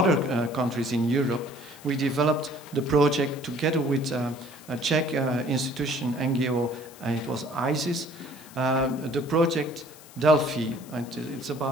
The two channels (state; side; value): noise; left; hiss, 21 dB below the sound